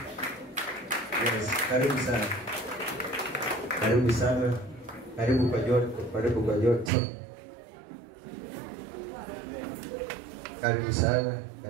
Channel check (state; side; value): drops out; left; at 6.9 s